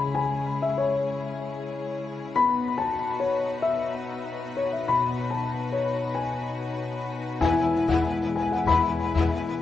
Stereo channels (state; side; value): quieter; right; 3.4 dB